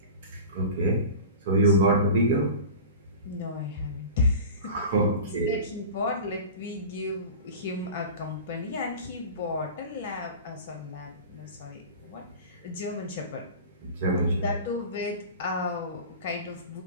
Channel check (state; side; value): inverted; both; correlation -0.34